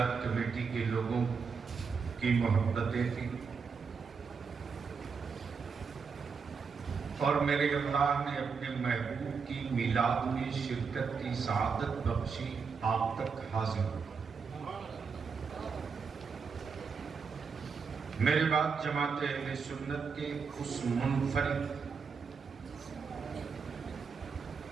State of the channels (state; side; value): quieter; left; 5.6 dB